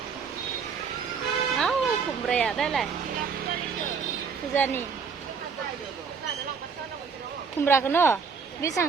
kumbra đây này Fuzani kumbra cái nó biết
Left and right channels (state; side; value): quieter; left; 5.7 dB